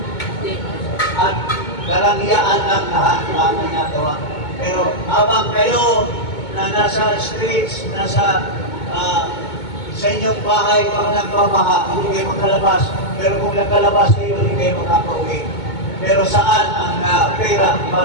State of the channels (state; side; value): late; right; 2.2 ms